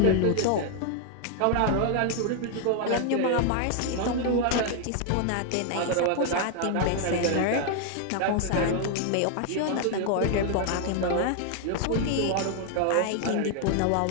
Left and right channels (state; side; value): different; both; correlation 0.00